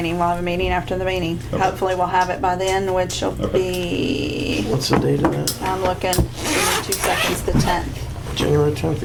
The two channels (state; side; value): identical; both; correlation 1.00